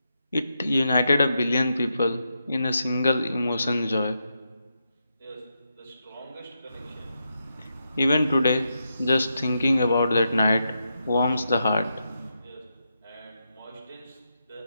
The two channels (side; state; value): both; inverted; correlation -0.85